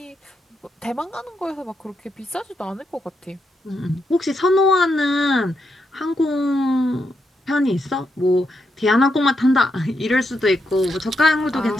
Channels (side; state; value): both; normal; correlation 0.81